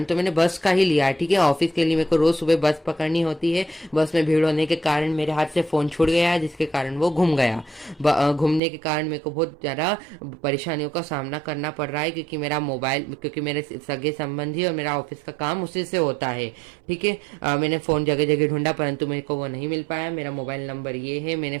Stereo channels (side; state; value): left; drops out; at 8.6 s